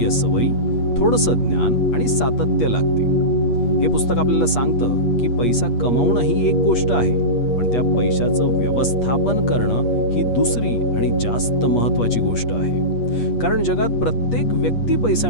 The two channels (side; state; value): right; late; 8.4 ms